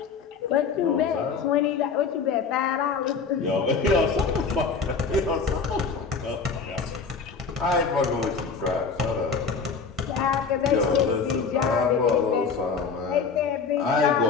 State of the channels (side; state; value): right; quieter; 5.4 dB